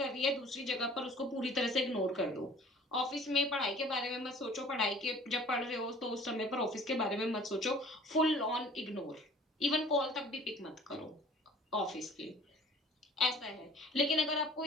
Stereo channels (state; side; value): normal; both; correlation 0.50